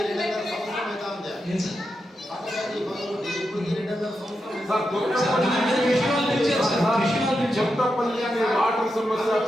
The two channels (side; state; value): both; normal; correlation 0.87